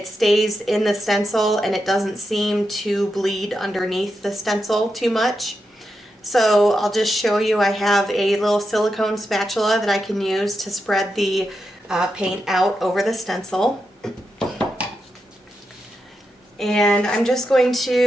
stays in the stencil and it doesn't seem to bleed underneath the stencil too much. So I'll just show you. I have a little silicone spatula that I can use to spread the paint out over the stencil. And I'm just going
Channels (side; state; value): both; normal; correlation 0.87